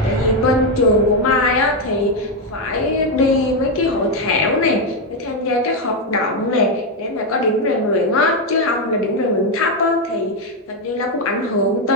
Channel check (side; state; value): both; normal; correlation 0.04